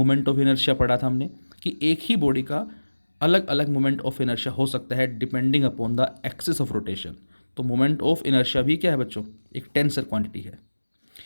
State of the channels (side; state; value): both; inverted; correlation -1.00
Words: ऑफ इनर्शिया पढ़ा था हमने कि एक ही बॉडी का अलग अलग मोमेंट ऑफ इनर्शिया हो सकता है depending upon the axis of rotation. तो मोमेंट ऑफ इनर्शिया भी क्या है बच्चों, एक टेंसर क्वांटिटी है।